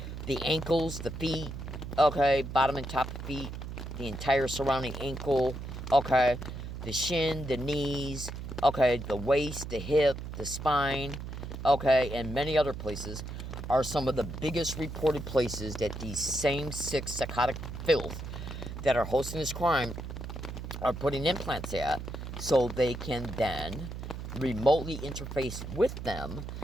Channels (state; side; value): noise; right; hum, 8 dB below the sound